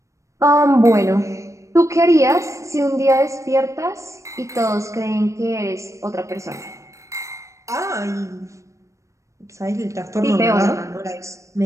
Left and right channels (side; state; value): left; late; 0.15 ms